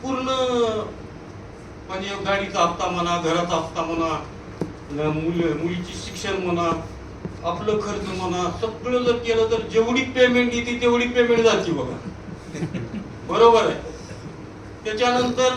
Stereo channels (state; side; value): identical; both; correlation 1.00